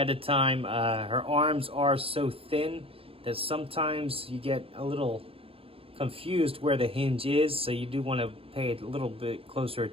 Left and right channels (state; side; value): late; left; 0.27 ms